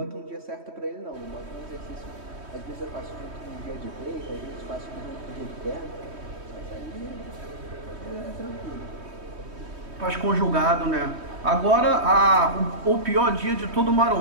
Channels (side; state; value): left; late; 3.2 ms